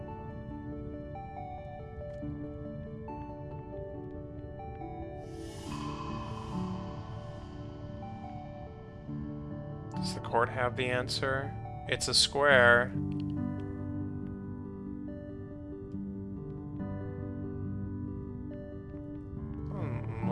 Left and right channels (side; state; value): both; identical; correlation 1.00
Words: Does the court have the answer? It's a square.